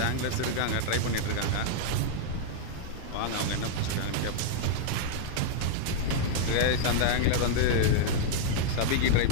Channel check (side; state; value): both; different; correlation -0.01